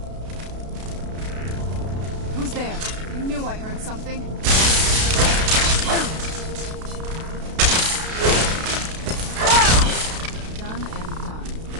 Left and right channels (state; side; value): late; left; 32 ms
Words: Who's there? I knew I heard something. Done and done.